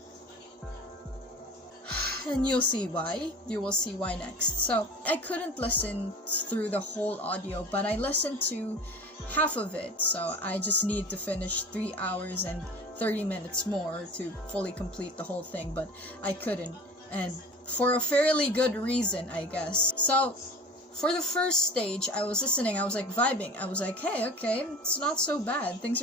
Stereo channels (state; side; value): normal; both; correlation 0.39